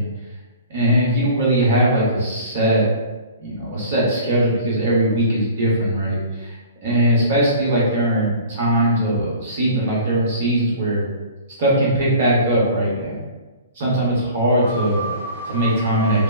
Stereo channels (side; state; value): both; inverted; correlation -0.43